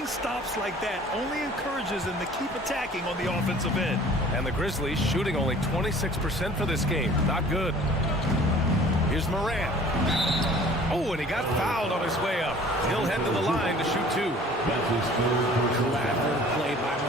stops like that only encourages them to keep attacking on the offensive end. And the Grizzlies shooting only 26% for this game. Not good. Here's Morant. Oh, and he got fouled on his way up. He'll head to the line to shoot two. That's his third personal Clever foul. play by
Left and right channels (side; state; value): both; normal; correlation 0.49